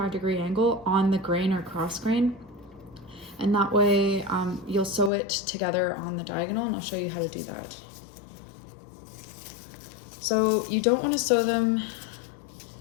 angle on the grain or cross grain. And that way you'll sew it together on the diagonal, and I'll show you how to do that. So you don't want to sew them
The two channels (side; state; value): right; drops out; at 5.1 s